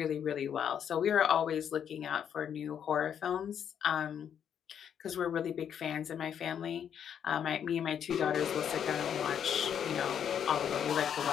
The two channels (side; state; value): right; quieter; 8.6 dB